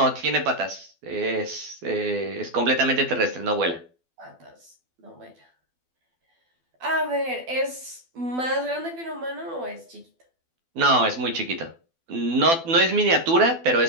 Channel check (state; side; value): late; left; 12 ms